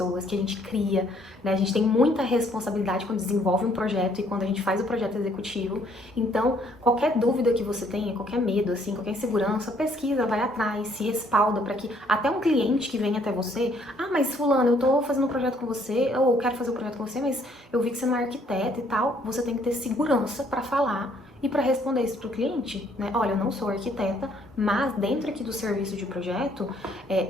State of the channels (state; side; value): normal; both; correlation 0.65